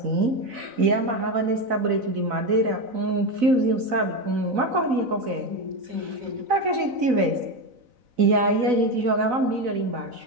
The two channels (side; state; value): left; late; 4.0 ms